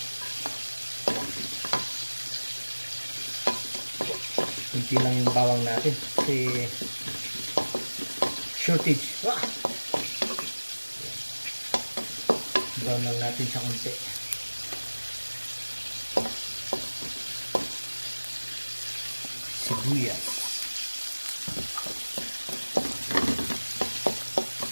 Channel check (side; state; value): both; inverted; correlation -1.00